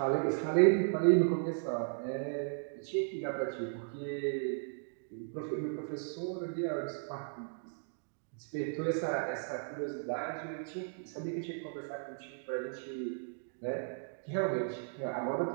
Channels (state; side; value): silent; left; digital silence